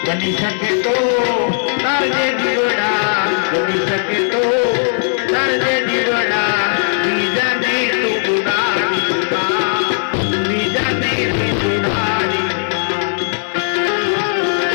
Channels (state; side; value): silent; right; digital silence